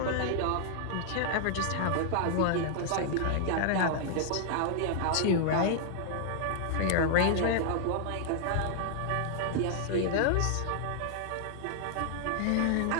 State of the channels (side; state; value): both; different; correlation -0.01